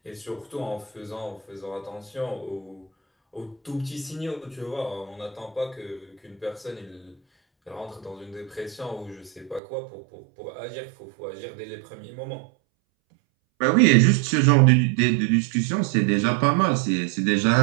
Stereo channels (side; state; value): left; drops out; at 9.6 s